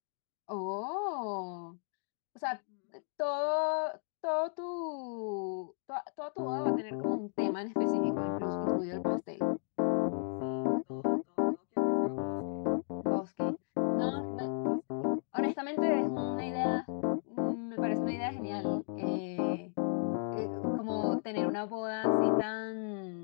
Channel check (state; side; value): silent; right; digital silence